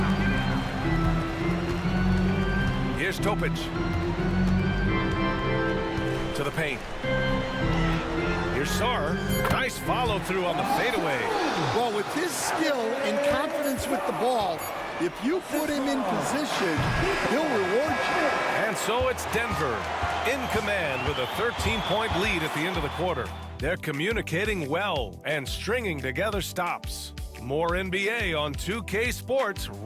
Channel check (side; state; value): both; identical; correlation 1.00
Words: Here's Topic. To the paint. Here's Sarr. Nice follow through on the fadeaway. Well, with his skill and confidence with the ball, if you put him in position, he'll reward you. And so it's Denver in command with a 13-point lead at the end of the quarter. They're communicating well and stringing together stops. More NBA on 2K Sports